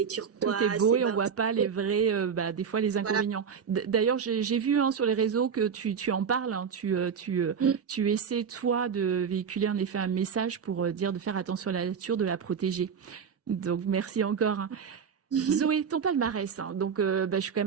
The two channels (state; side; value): quieter; left; 6.8 dB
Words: turquoise. Tout est beau et on voit pas les vrais, des fois les inconvénients. Voilà. D'ailleurs, j'ai vu sur les réseaux que tu en parles. Hein, tu essaies toi de véhiculer en effet un message pour dire de faire attention à la nature, de la protéger. Donc merci encore. Hein. Zoé, ton palmarès, hein. Donc je suis quand